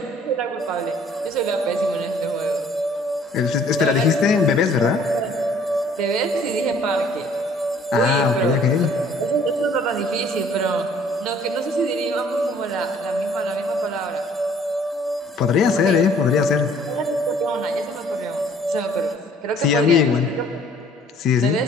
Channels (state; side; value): normal; both; correlation 0.57